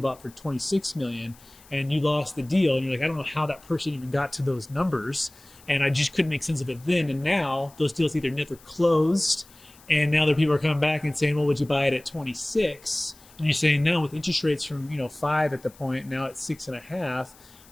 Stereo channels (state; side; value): noise; left; hiss, 25 dB below the sound